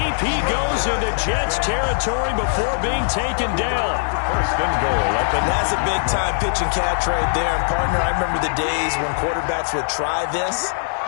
he goes into Jets territory before being taken down. 1st and goal. That's a big-time pitch and catch right there. And, partner, I remember the days when quarterbacks would try this.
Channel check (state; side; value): silent; right; digital silence